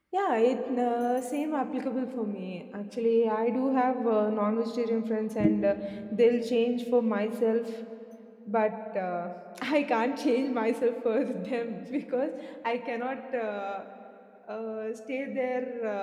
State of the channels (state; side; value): identical; both; correlation 1.00